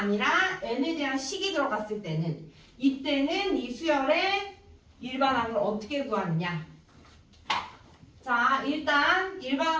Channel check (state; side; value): identical; both; correlation 1.00